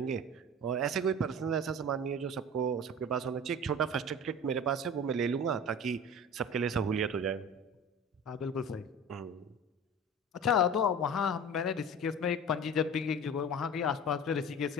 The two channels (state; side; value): normal; both; correlation 0.36